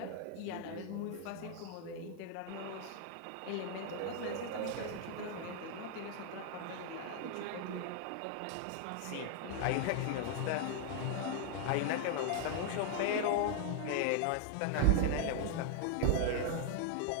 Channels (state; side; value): different; both; correlation 0.00